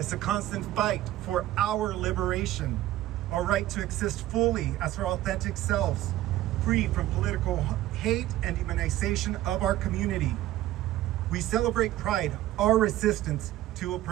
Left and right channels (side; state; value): left; quieter; 14.7 dB